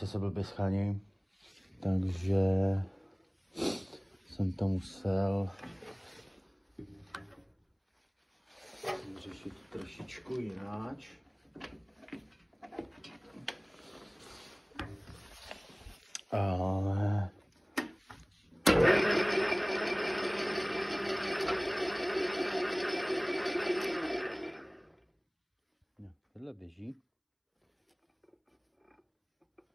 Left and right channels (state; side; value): identical; both; correlation 1.00